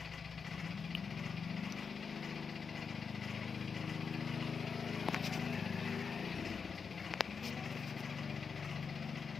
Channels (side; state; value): right; quieter; 5.7 dB